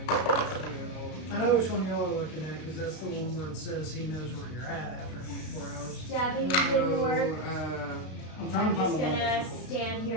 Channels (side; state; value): right; late; 33 ms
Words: I know which one y'all are looking at because that's the one where it says he knows where you're at after 24 hours. Stabbing didn't work. I'm trying I'm to find just the one gonna that's stand